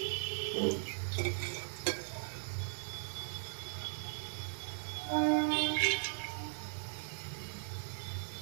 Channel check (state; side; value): silent; left; digital silence